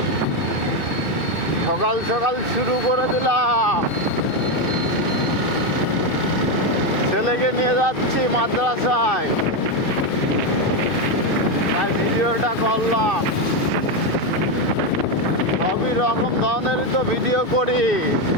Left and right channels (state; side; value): late; right; 2.7 ms